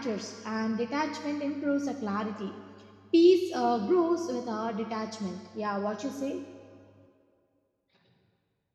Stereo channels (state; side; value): identical; both; correlation 1.00